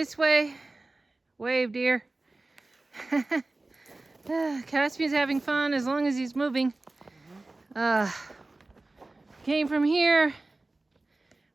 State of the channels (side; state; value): left; quieter; 3.0 dB